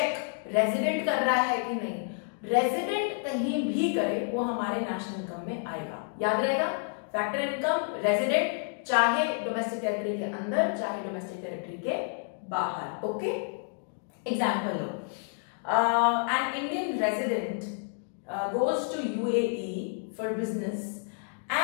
रेजिडेंट कर रहा है कि नहीं, रेजिडेंट कहीं भी करे वो हमारे नेशनल इनकम में आएगा। याद रहेगा, फैक्टर इनकम रेजिडेंट, चाहे डोमेस्टिक टेरिटरी के अंदर चाहे डोमेस्टिक टेरिटरी के बाहर। Okay, example low, an Indian resident goes to UAE for business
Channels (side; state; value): right; silent; 58 dB below the other